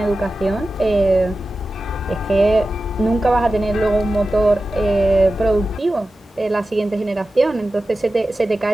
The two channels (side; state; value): both; normal; correlation 0.94